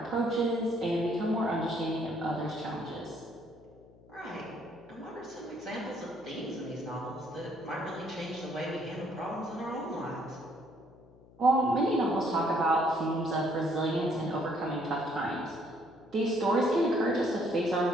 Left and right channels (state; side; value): noise; left; hum, 24 dB below the sound